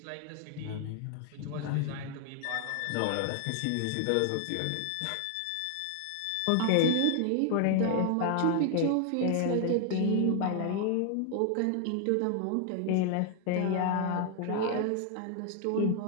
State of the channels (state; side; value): different; both; correlation 0.00